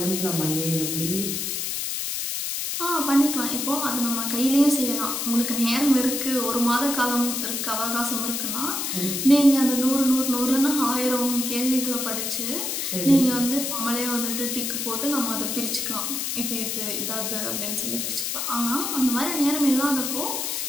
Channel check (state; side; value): noise; left; hiss, 2 dB below the sound